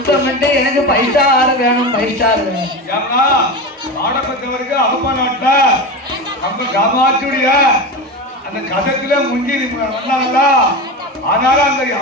எனக்கு பைசா வேணும் பைசா வேணும். மாடப்பத்தவருக்கு அகப்ப நாட்ட நம்ம காமாச்சுடைய அந்த கசத்துல முங்கி வந்தாங்களா, அதனால அந்த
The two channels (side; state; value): both; normal; correlation 0.23